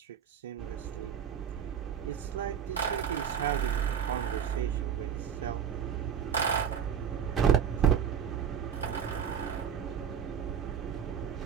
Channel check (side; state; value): left; quieter; 8.0 dB